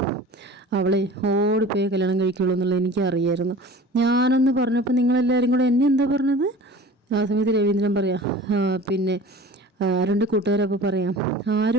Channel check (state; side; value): normal; both; correlation 0.41